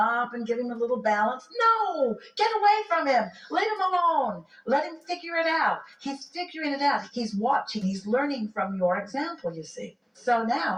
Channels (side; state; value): both; identical; correlation 1.00